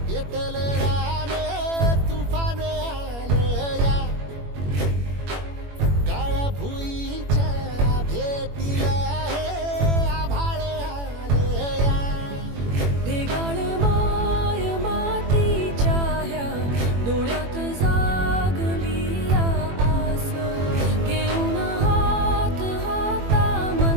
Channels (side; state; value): left; late; 21 ms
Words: पेटल रान तुफान आलया काळ्या भुईच्या भेटीला हे आभाळ आलया ढेगाळ माय मातीच्या ह्या डोळ्यात जागली आस घेऊन हात